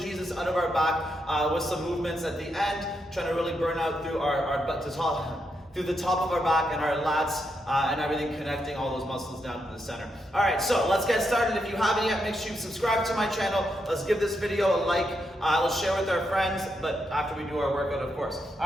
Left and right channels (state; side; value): normal; both; correlation 0.82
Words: out of our back with some movements at the end, trying to really burn out through our butt to top. Through the top of our back and our lats and everything, connecting all those muscles down to the center. All right, so let's get started. If you haven't yet, make sure you subscribe to my channel. Let's give this video a like. Let's share with our friends, but after we do our workout, of course.